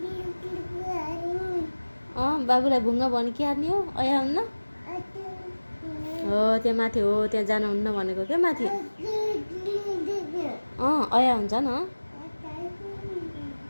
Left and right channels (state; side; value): inverted; both; correlation -1.00